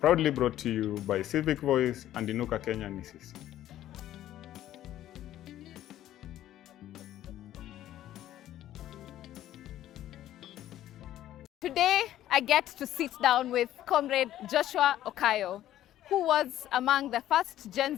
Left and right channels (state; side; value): quieter; right; 12.9 dB